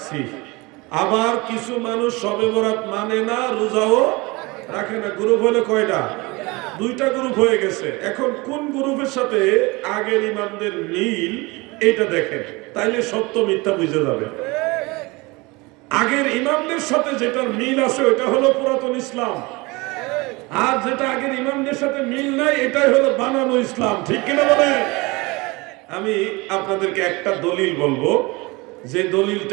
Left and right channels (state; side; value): quieter; left; 24.6 dB